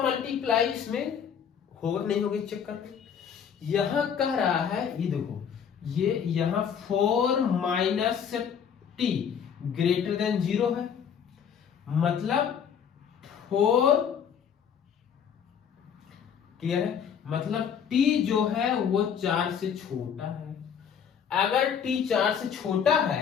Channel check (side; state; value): right; quieter; 7.7 dB